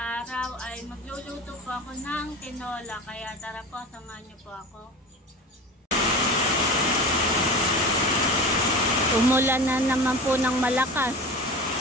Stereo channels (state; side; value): normal; both; correlation 0.32